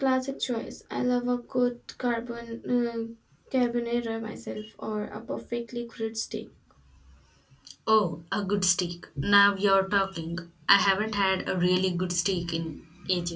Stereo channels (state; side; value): identical; both; correlation 1.00